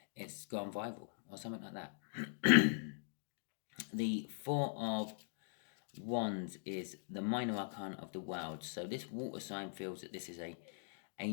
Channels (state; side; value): silent; right; digital silence